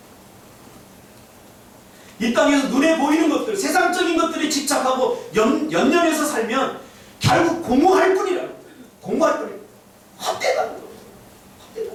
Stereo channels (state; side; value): identical; both; correlation 1.00